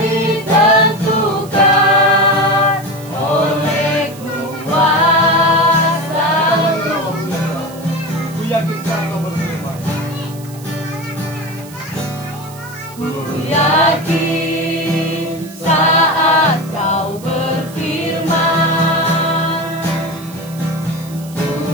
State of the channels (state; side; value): noise; right; hiss, 19 dB below the sound